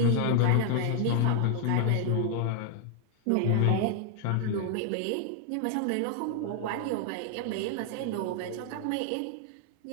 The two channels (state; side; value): different; both; correlation 0.00